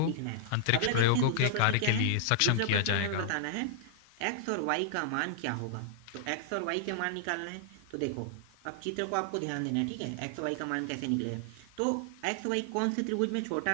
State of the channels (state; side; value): different; both; correlation -0.01